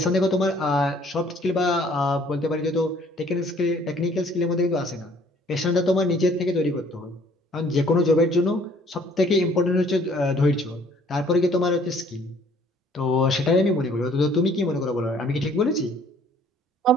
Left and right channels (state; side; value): normal; both; correlation 0.58